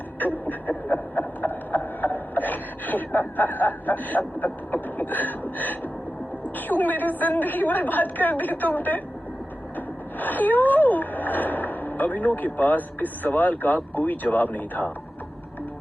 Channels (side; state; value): both; normal; correlation 0.93